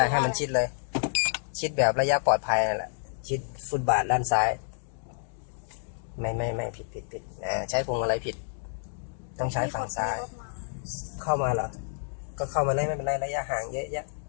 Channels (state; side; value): silent; right; digital silence